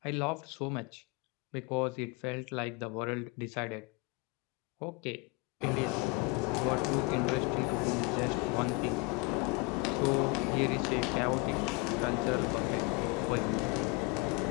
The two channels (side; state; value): right; quieter; 26.8 dB